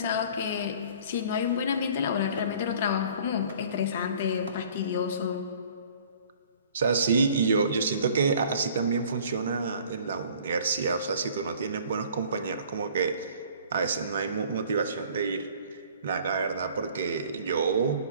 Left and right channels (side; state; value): both; inverted; correlation -0.52